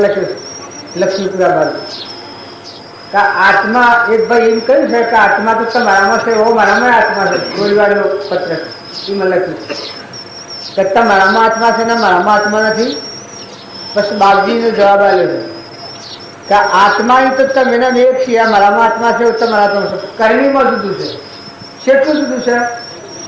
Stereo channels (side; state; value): both; identical; correlation 1.00